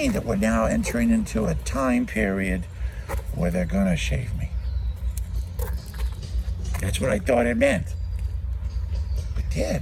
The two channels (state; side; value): identical; both; correlation 1.00